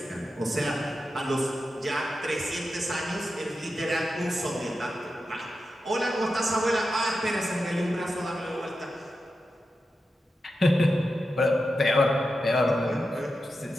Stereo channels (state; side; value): normal; both; correlation 0.90